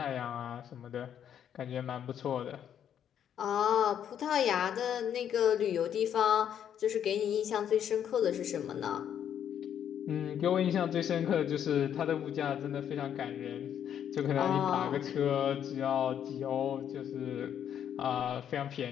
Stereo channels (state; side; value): quieter; right; 9.3 dB